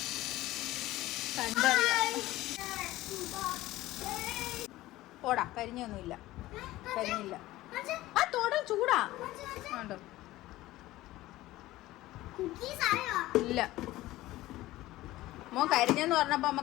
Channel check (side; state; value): right; quieter; 17.0 dB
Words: കണ്ടറിയാം. ഓടാ, കരിഞ്ഞൊന്നുമില്ല. കരിഞ്ഞില്ല. ആ തോട ചൂടാ കണ്ടോ? ഇല്ല. മോ കരിഞ്ഞെന്ന് പറഞ്ഞപ്പോ അമ്മ